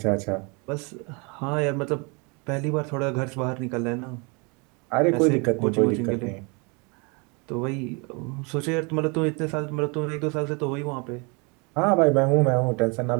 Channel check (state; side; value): quieter; left; 31.4 dB